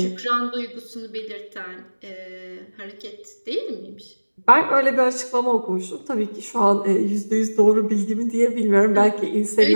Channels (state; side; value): inverted; both; correlation -1.00